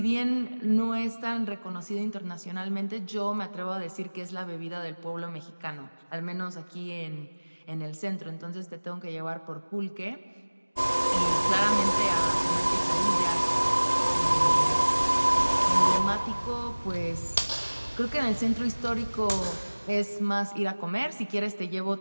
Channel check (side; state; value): both; inverted; correlation -1.00